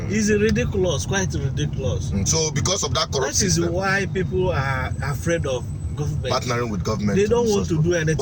It's ridiculous, quite ridiculous. So because of that corrupt system, that is why people are afraid of government. Partnering with government. They don't want to do anything.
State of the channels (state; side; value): identical; both; correlation 1.00